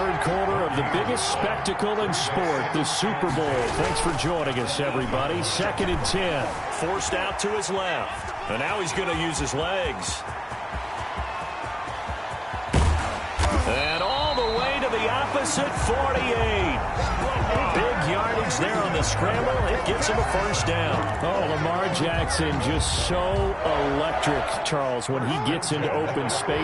quarter of the biggest spectacle in sport, the Super Bowl. Thanks for joining us, everybody. 2nd and 10. Forced out to his left. And now he's going to use his legs. And all the way to the opposite 48. Big yardage there on the scramble. It gets him a first down. Oh, Lamar Jackson just so electric, Charles, when he gets into open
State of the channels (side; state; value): both; identical; correlation 1.00